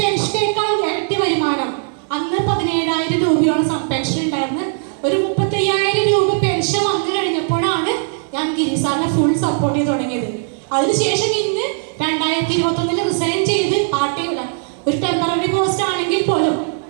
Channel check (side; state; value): left; silent; digital silence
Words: ഇരട്ടി വരുമാനം. അന്ന് 17,000 രൂപയോളം പെൻഷൻ ഉണ്ടായിരുന്നു. ഒരു 35,000 രൂപ പെൻഷൻ വന്നു കഴിഞ്ഞപ്പോഴാണ് ഞാൻ ഗിരിസാറിനെ ഫുൾ സപ്പോർട്ട് ചെയ്ത് തുടങ്ങിയത്. അതിനുശേഷം ഇന്ന് 2021 റിസൈൻ ചെയ്ത് പാർട്ട് ടൈം, ഒരു ടെമ്പററി പോസ്റ്റ് ആണെങ്കിൽ പോലും